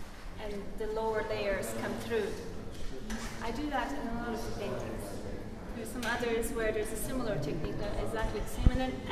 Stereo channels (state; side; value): identical; both; correlation 1.00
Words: and the lower layers come through. I do that in a lot of the paintings. There's some others where there's a similar technique, not exactly the same. And then